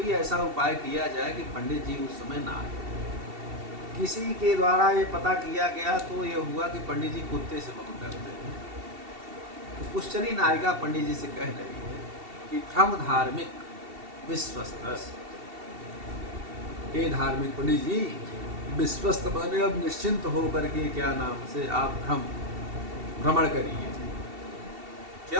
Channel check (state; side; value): late; left; 2.7 ms